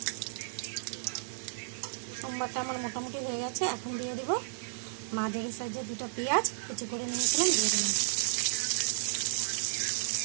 সোমবারটা আমার মোটামুটি হয়ে গেছে। এখন দিয়ে দিব মাঝারি সাইজের 2টা পেঁয়াজ কুচি করে নিয়েছিলাম, দিয়ে দিলাম।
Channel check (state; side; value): silent; left; digital silence